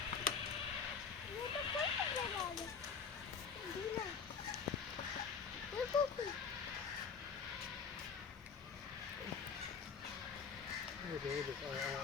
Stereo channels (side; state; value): right; quieter; 6.1 dB